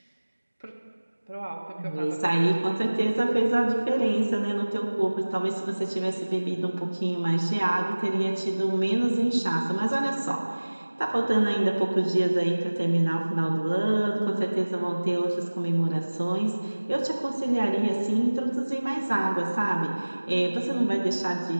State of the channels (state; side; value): inverted; both; correlation -1.00